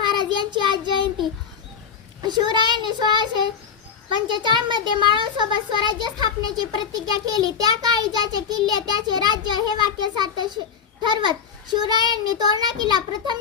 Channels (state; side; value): quieter; right; 7.0 dB